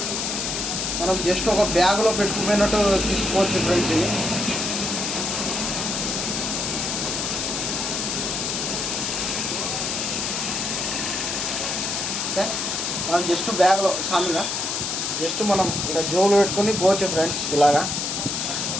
మనం జస్ట్ ఒక బ్యాగ్లో పెట్టుకుపోయినట్టు తీసుకోవచ్చు ఫ్రెండ్స్. ఇది ఓకే, మనం జస్ట్ బ్యాగ్లో సామిగా జస్ట్ మనం ఇలా జోబులో పెట్టుకొని పోవచ్చు ఫ్రెండ్స్. ఇలాగా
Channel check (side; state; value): left; noise; hiss, 1 dB below the sound